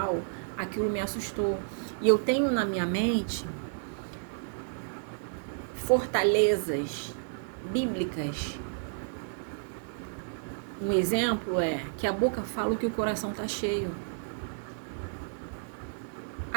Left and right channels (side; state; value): left; silent; 55 dB below the other